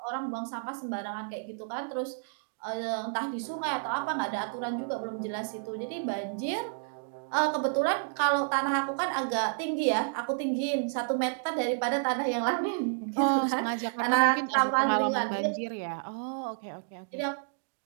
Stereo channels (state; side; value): silent; left; digital silence